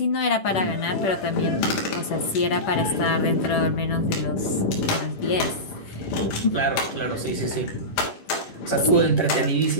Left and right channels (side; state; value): right; late; 10 ms